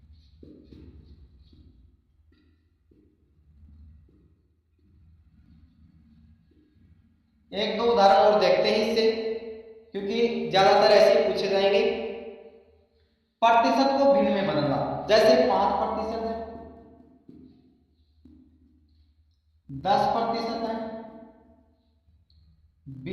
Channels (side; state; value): both; identical; correlation 1.00